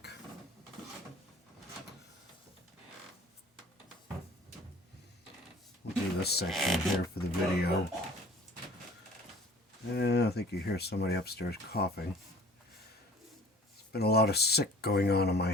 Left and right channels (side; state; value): both; normal; correlation 0.48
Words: We'll do this section here for the video. And I think you hear somebody upstairs coughing. There's been a lot of sick going on in my